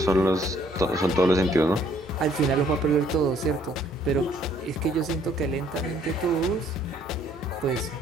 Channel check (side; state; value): both; normal; correlation 0.63